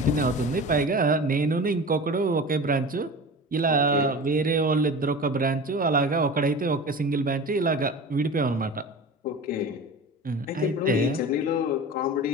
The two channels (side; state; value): both; normal; correlation 0.34